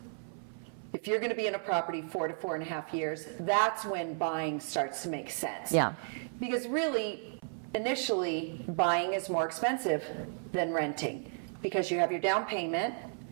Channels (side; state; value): left; silent; 55 dB below the other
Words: if you're going to be in a property 4 to 4.5 years, that's when buying starts to make sense. Yeah. Because really, initially, buying is more expensive than renting, because you have your down payment